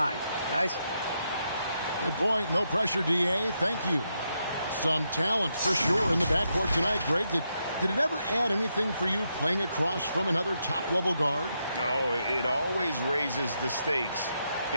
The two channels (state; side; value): inverted; both; correlation -0.82